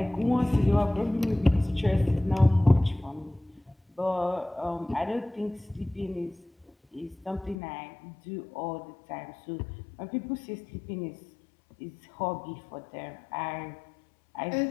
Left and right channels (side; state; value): right; drops out; at 7.6 s